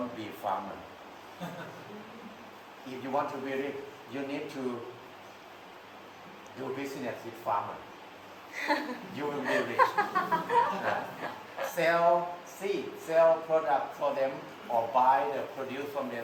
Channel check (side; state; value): both; identical; correlation 1.00